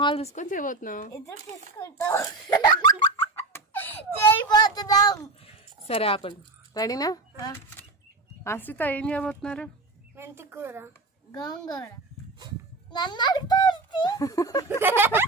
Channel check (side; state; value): left; quieter; 3.4 dB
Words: చూసుకొని చేయబోతున్నాం. ఇద్దరు తీసుకుంటాం. చేయబోతున్నాం. సరే ఆపండి. రెడీనా? అశ్రిత ఏం చేయబోతున్నారు? మెంతి కూర, గోంగూర. నన్ను అడుగుతారు